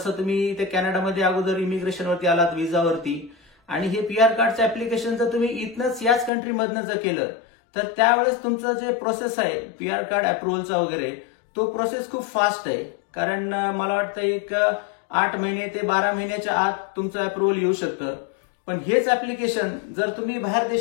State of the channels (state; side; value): drops out; right; at 6.3 s